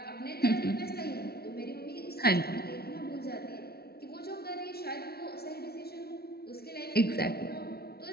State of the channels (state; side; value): late; right; 0.45 ms